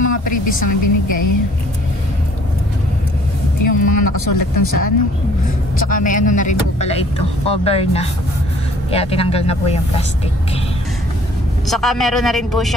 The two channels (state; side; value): normal; both; correlation 0.57